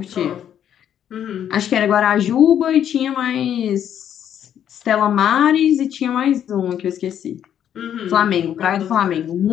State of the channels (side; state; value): right; quieter; 9.7 dB